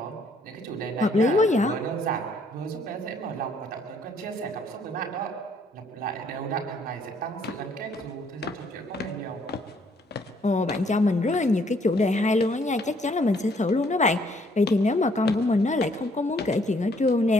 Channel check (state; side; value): normal; both; correlation 0.66